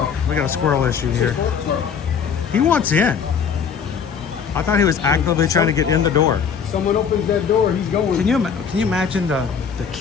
We got a squirrel issue here. He wants in. I thought he was actively trying to get in the door. Someone opens that door, he's going. Can you imagine the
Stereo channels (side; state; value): right; quieter; 6.7 dB